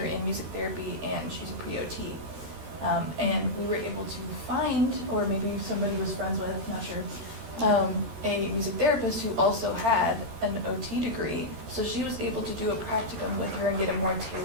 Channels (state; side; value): late; left; 13 ms